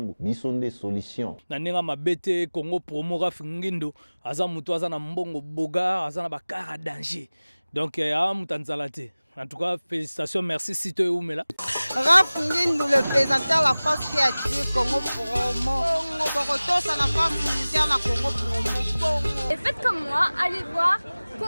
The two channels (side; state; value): both; inverted; correlation -0.99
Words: bison des solutions. Nanenga mabete Congo Promo Raph Ngindou, aza mutu aza na mbongo boga, aza na bakara danger. Donc, mutanzalate. En tout cas, félicitations, merci Sito Oumela. Raph Ngindou, le présentateur de la force créative Congo Promo. Ça la force militaire la Congo Promo. Et faites comme moi, allez voir